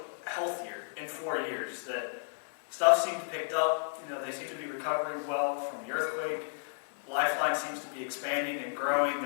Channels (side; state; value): right; silent; digital silence